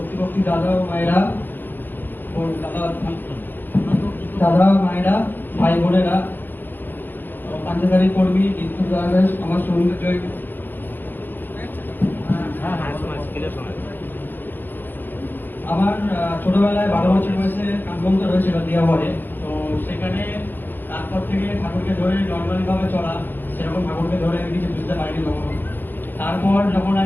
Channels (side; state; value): right; late; 0.091 ms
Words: দাদা ও মায়েরা, দাদা মায়েরা, ভাই বোনেরা, পাঞ্জাবারি কর্মী, বিদ্যুৎ দাস, আমার সৌন্দর্য। আমার ছোটবেলায় 12 বছর বয়সে কাঠবন্ধ রয়েছিল দিয়াবাড়ে। তো সেখানে তারপর থেকে ঠাকুরকে ধরে নর্মালি ভাবে চলা, সেরকম ঠাকুরকে ধরে আমি কিছু বুঝতে পারিনি কখনো। তারপর যখন